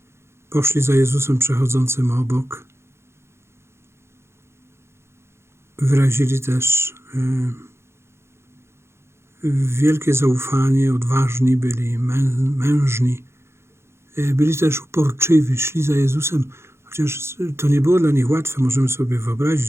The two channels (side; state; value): left; late; 0.13 ms